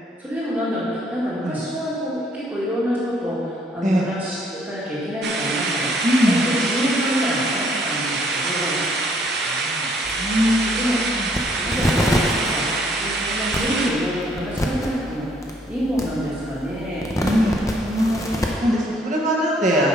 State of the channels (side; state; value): both; normal; correlation 0.65